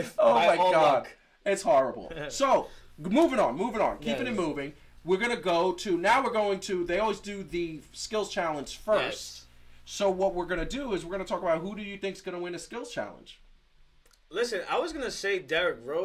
my all God. luck. It's horrible. So, moving on. Keeping it moving. We're going to they always do the skills challenge first. Yes. So what we're going to do is we're going to talk about who do you think is going to win a skills challenge. Listen, I was going to say Derrick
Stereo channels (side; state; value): both; identical; correlation 1.00